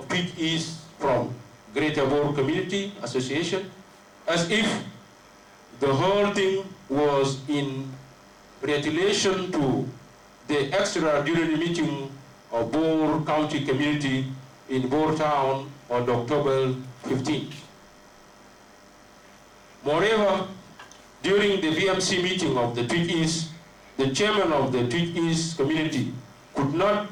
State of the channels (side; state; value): both; identical; correlation 1.00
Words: Twic from Greater Boer Community Association, as if the whole thing was in retaliation to the extraordinary meeting of Boer County Community in Boer Town on October 15th. Moreover, during the BMC meeting of the Twic, the chairman of the Twic community could not